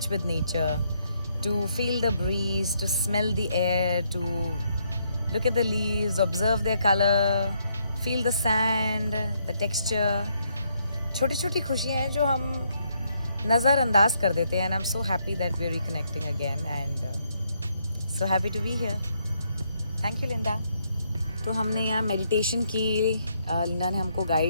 with nature, to feel the breeze, to smell the air, to look at the leaves, observe their colour, feel the sand, the texture. छोटी छोटी खुशियाँ हैं जो हम नज़रअंदाज कर देते हैं. And I am so happy that we are reconnecting again and so happy to be here. Thank you Linda. तो हमने यहाँ मेडिटेशन की. लिंडा ने हमको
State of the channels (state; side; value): inverted; both; correlation -0.75